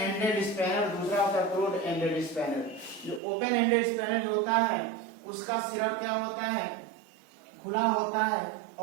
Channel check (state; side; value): drops out; left; at 3.2 s